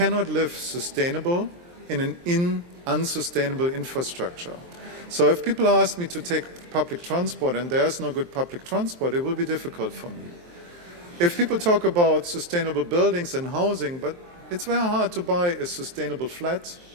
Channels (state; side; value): late; left; 23 ms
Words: live sustainable in an unsustainable infrastructure. So if people ask me to take public transport and there's no good public transport, it will be difficult for me. If people talk about sustainable buildings and housing, but it's very hard to buy a sustainable flat,